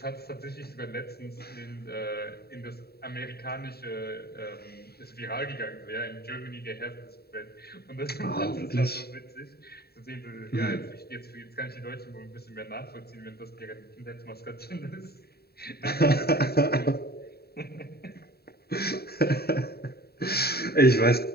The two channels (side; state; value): right; late; 0.46 ms